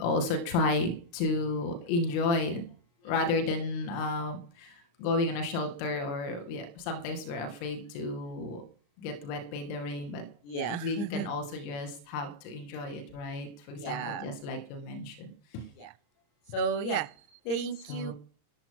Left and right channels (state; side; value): late; right; 35 ms